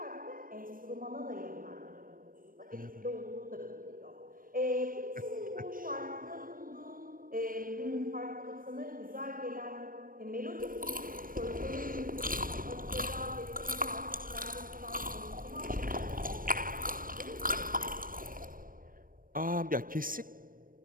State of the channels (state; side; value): late; left; 0.41 ms